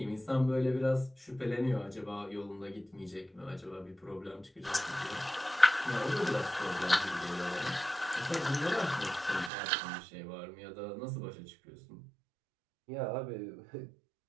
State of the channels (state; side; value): drops out; left; at 9.5 s